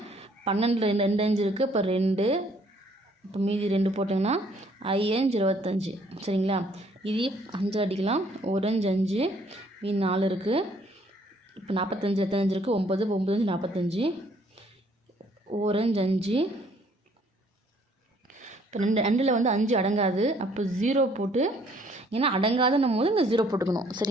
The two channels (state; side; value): normal; both; correlation 0.62